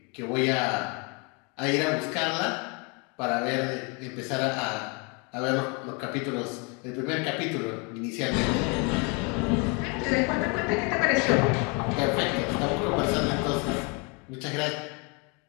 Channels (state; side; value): quieter; right; 32.4 dB